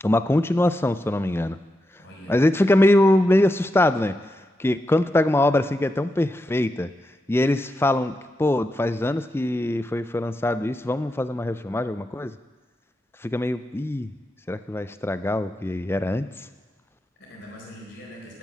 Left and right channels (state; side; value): normal; both; correlation 0.87